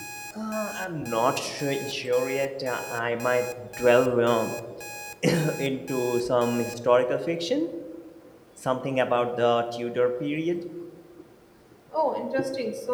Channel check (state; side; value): identical; both; correlation 1.00